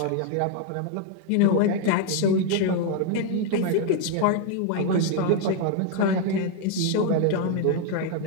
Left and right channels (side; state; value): both; different; correlation 0.00